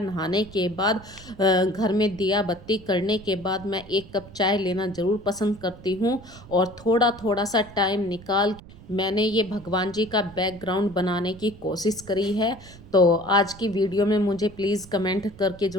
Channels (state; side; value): noise; right; rumble, 19 dB below the sound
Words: नहाने के बाद घर में दिया बत्ती करने के बाद मैं एक कप चाय लेना ज़रूर पसंद करती हूँ। और थोड़ा थोड़ा सा टाइम निकाल मैंने ये भगवान जी का बैकग्राउंड बनाने की कोशिश करी है। तो आज की वीडियो में मुझे प्लीज़ कमेंट करके